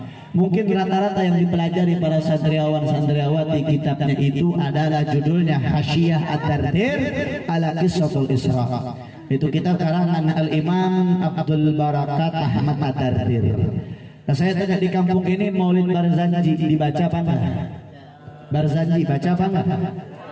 Mungkin rata-rata yang dipelajari para santriawan-santriawati kitabnya itu adalah judulnya Hasyiyah Ad-Dardir ala Qissatul Isra. Itu kitab karangan Al-Imam Abdul Barakat Ahmad Ad-Dardir. Nah, saya tanya di kampung ini Maulid Barzanji dibaca apa enggak? Barzanji baca apa enggak?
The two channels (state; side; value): identical; both; correlation 1.00